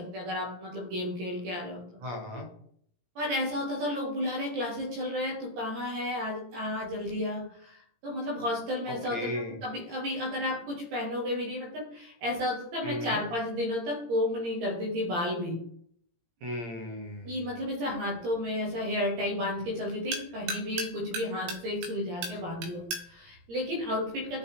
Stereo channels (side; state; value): left; late; 17 ms